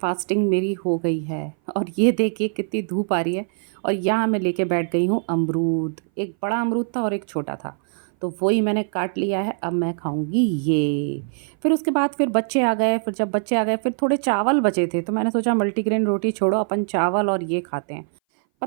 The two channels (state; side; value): silent; left; 59 dB below the other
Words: मेरी हो गई है। और ये देखिए कितनी धूप आ रही है। और यहाँ मैं लेके बैठ गई हूँ अमरूद। एक बड़ा अमरूद था और एक छोटा था, तो वही मैंने काट लिया है। अब मैं खाऊंगी ये। फिर उसके बाद फिर बच्चे आ गए, फिर जब बच्चे आ गए फिर थोड़े चावल बचे थे, तो मैंने सोचा मल्टीग्रेन रोटी छोड़ो, अपन चावल और ये खाते हैं।